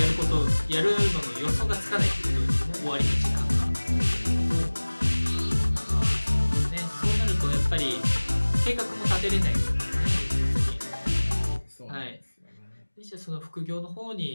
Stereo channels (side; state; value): both; inverted; correlation -1.00